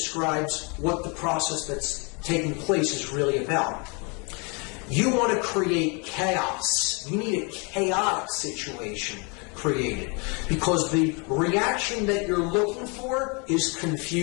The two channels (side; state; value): right; quieter; 32.5 dB